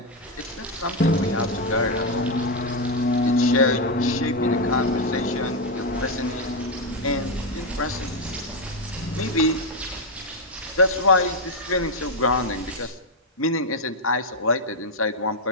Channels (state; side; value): normal; both; correlation 0.04